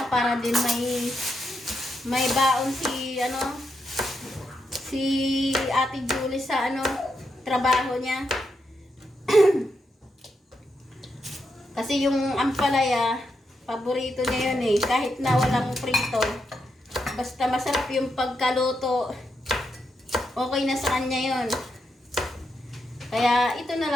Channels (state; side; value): normal; both; correlation 0.83